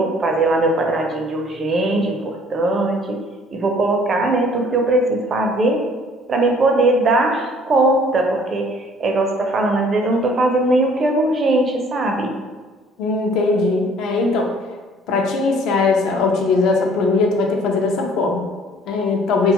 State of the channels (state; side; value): normal; both; correlation 0.56